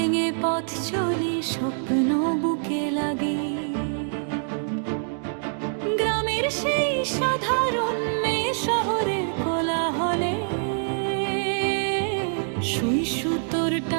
পথ চলি, স্বপ্ন বুকে লাগি। গ্রামের সেই সাধারণ মেয়ে শহরের কোলাহলে, সুই সুতোর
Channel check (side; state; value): left; silent; digital silence